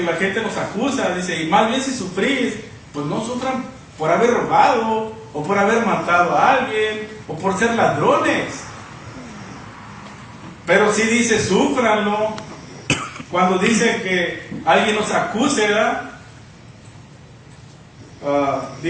la gente nos acusa, dice, y más bien si sufrís, pues no sufran por haber robado, o por haber matado a alguien, o por ser ladrones. Pero sí dice, súfranlo. Cuando dice que alguien nos acuse,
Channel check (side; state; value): both; identical; correlation 1.00